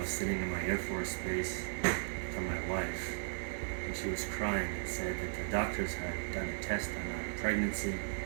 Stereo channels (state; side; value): silent; left; digital silence